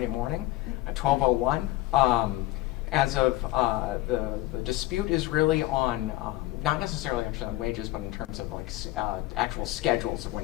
morning at 12:01. As of the dispute is really on, not necessarily actually on wages, but in terms of actual schedules of when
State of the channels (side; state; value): right; quieter; 17.6 dB